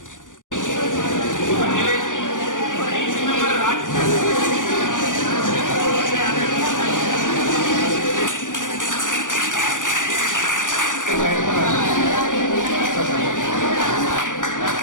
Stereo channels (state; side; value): late; right; 0.87 ms